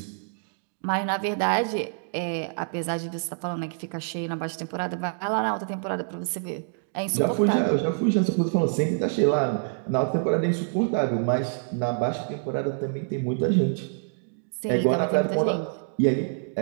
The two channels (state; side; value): silent; left; digital silence